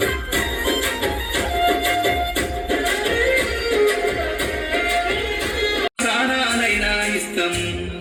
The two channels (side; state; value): both; identical; correlation 1.00